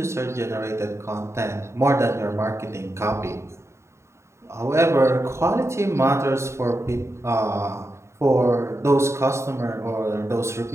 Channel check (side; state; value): left; late; 0.13 ms